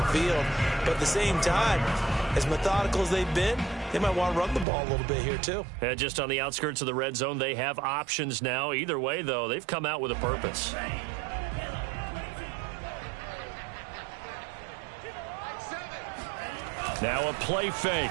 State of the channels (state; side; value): drops out; left; at 4.7 s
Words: field. But at the same time, as methodical as they've been, they might want to run the ball a little bit here too. And just on the outskirts of the red zone, they have options now. Either way, though, they've come out with a purpose. Now a play fake.